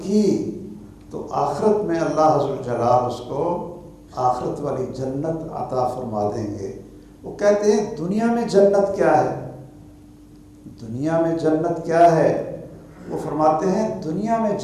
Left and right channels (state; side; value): identical; both; correlation 1.00